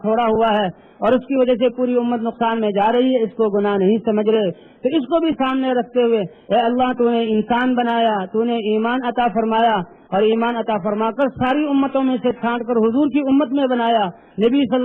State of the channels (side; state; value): both; identical; correlation 1.00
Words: چھوڑا ہوا ہے اور اس کی وجہ سے پوری امت نقصان میں جا رہی ہے، اس کو گناہ نہیں سمجھ رہے۔ تو اس کو بھی سامنے رکھتے ہوئے اے اللہ تو نے انسان بنایا، تو نے ایمان عطا فرمایا اور ایمان عطا فرما کر ساری امتوں میں سے چھانٹ کر حضور کی امت میں بنایا، نبی صلی